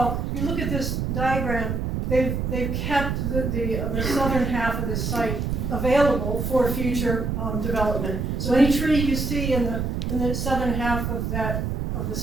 if you look at this diagram, they've kept the southern half of this site available for future development. So any tree you see in the southern half of the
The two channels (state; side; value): noise; right; rumble, 1 dB below the sound